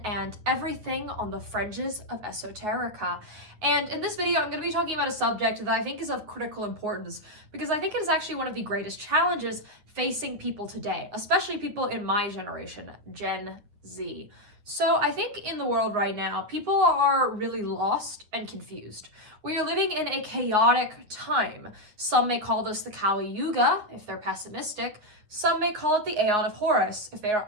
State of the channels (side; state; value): left; late; 9.6 ms